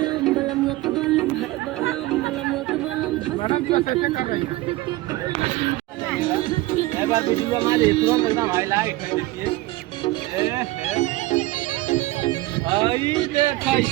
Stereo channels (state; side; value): quieter; left; 18.6 dB